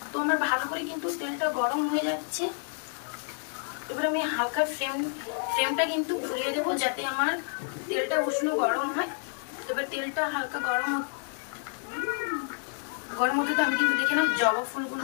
তো আমার ভালো করে কিন্তু তেলটা গরম হয়ে যাচ্ছে। এবার আমি হালকা ফ্লেমটা কিন্তু ঘুরিয়ে দেবো, যাতে আমার তেলটা উষ্ণ গরম হয়। এবার তেলটা হালকা গরম হতে আমি কিন্তু দেখে নাও জবা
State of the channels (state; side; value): silent; right; 58 dB below the other